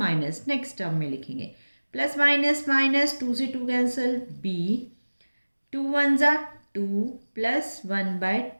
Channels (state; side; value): inverted; both; correlation -1.00